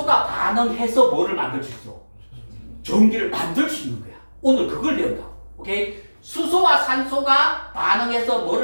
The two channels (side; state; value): both; inverted; correlation -1.00